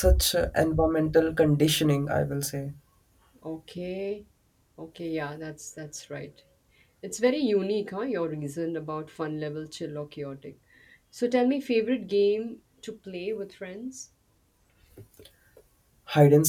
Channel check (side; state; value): both; identical; correlation 1.00